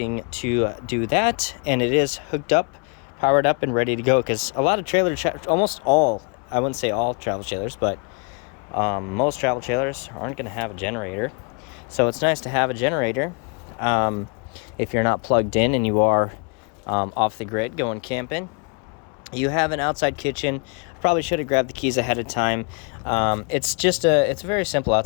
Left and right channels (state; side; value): quieter; right; 36.2 dB